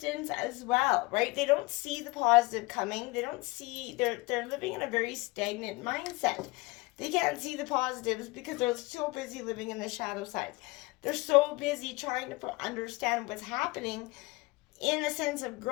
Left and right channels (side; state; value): right; quieter; 23.3 dB